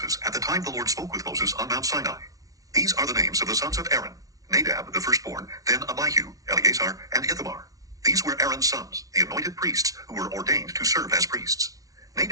at the time the Lord spoke with Moses on Mount Sinai. These are the names of the sons of Aaron: Nadab the firstborn, then Abihu, Eleazar, and Ithamar. These were Aaron's sons, the anointed priests, who were ordained to serve as priests.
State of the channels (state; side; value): late; left; 0.17 ms